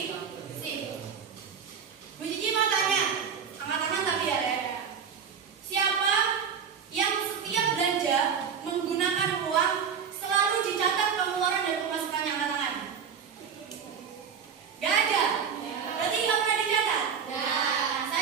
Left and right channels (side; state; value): left; quieter; 7.0 dB